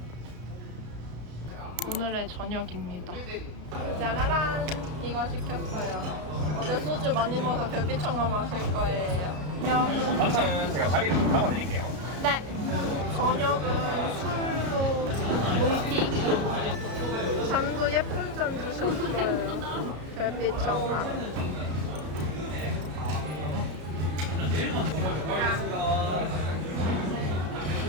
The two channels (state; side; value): late; left; 33 ms